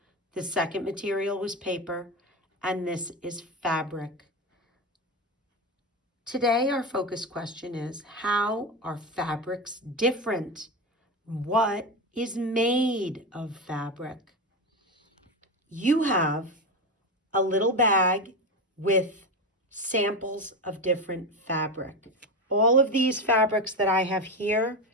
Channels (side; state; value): both; normal; correlation 0.18